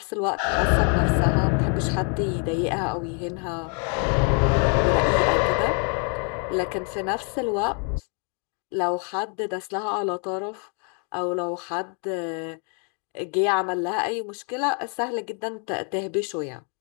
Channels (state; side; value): quieter; right; 38.3 dB